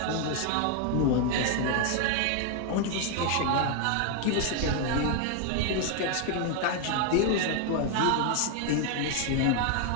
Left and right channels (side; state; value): both; different; correlation 0.00